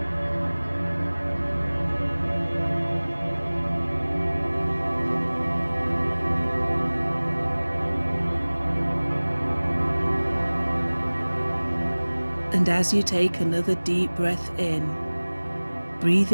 And as you take another deep breath in,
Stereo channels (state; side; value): inverted; both; correlation -1.00